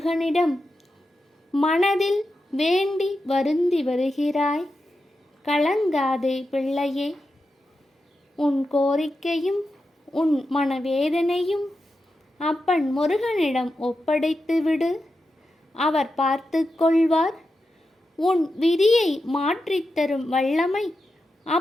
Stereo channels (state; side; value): normal; both; correlation 0.89